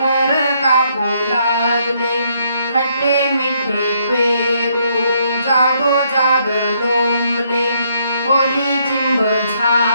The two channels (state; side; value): inverted; both; correlation -0.71